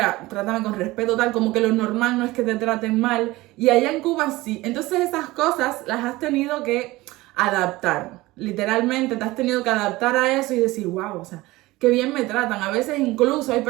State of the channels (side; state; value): left; quieter; 19.5 dB